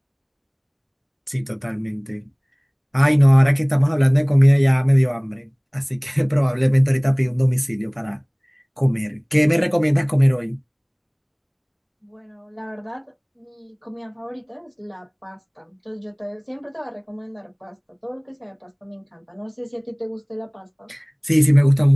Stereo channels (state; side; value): identical; both; correlation 1.00